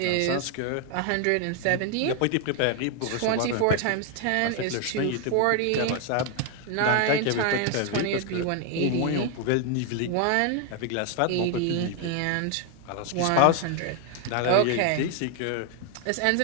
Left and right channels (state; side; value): different; both; correlation 0.01